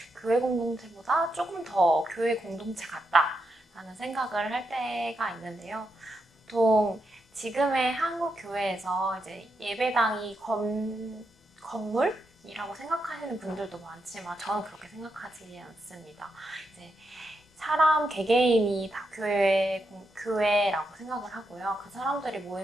교회 공동체보다 조금 더 교회 공동체 같다라는 생각을 할 때가 있는데요. 보통 지금의 한국 교회에서 이제 예배당이 건물이라고 생각하시는 분들도 많지만 저는 그렇게 생각하지 않습니다. 이제 사람 개개인이 다 교회라고 생각을 하고요. 그 사람들이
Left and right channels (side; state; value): both; normal; correlation 0.83